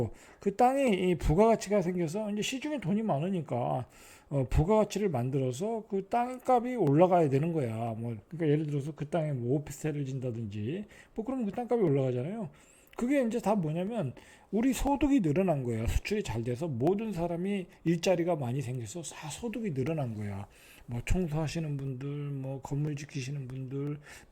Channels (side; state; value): both; identical; correlation 1.00